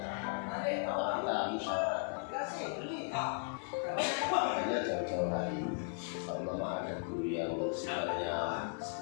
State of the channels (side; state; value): right; silent; 53 dB below the other